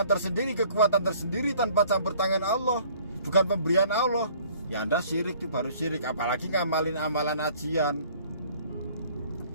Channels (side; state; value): both; inverted; correlation -0.56